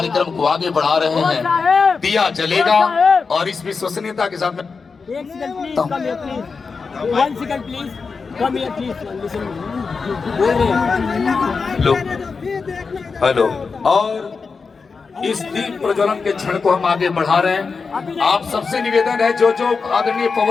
को आगे बढ़ा रहे हैं। दिया जलेगा और इस विश्वसनीयता के साथ में एक second please, come here please, 1 second please, come here please, listen, बोल रहे हैं। लो हेलो। और इस दीप प्रज्वलन के क्षण को हम आगे बढ़ा रहे हैं। आप सबसे निवेदन है जो आदरणीय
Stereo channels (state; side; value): quieter; right; 4.9 dB